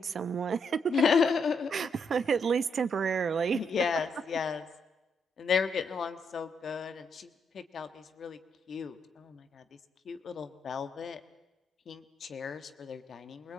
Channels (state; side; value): normal; both; correlation 0.77